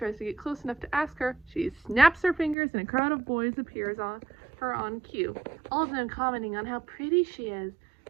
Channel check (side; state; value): left; drops out; at 2.6 s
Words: to get close enough to ask her, she snaps her fingers and a crowd of boys appears on her on cue, all of them commenting on how pretty she is.